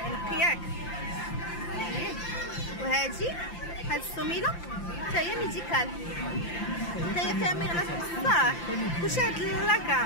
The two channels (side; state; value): right; late; 5.8 ms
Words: ياك. وهادي هاد السميله حتى هي ميديكال حتى هي فيها مغناطيس بصح كلشي هاد